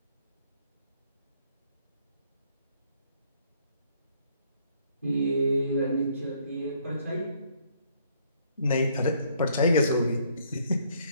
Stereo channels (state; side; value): inverted; both; correlation -0.66